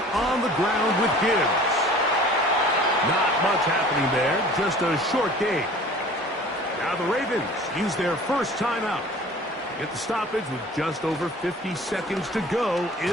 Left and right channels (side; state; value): both; normal; correlation 0.46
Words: on the ground with Gibbs. Not much happening there, just a short game. Now the Ravens use their first timeout. Get the stoppage with just over 50 seconds to go